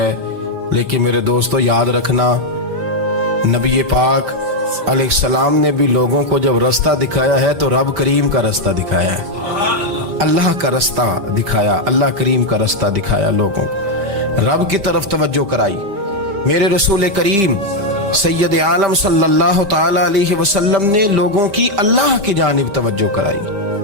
لیکن میرے دوستو یاد رکھنا، نبی پاک علیہ السلام نے بھی لوگوں کو جب رستہ دکھایا ہے تو رب کریم کا رستہ دکھایا ہے، اللہ کا رستہ دکھایا، اللہ کریم کا رستہ دکھایا، لوگوں رب کی طرف توجہ کرائی۔ میرے رسول کریم سید عالم صلی اللہ تعالی علیہ وسلم نے لوگوں کی اللہ کی جانب توجہ کرائی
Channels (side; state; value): left; late; 5.1 ms